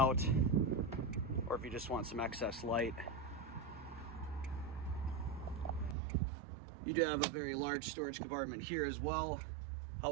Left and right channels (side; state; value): left; drops out; at 6.0 s